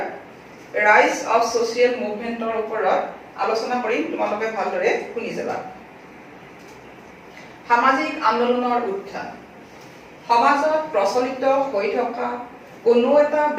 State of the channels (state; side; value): identical; both; correlation 1.00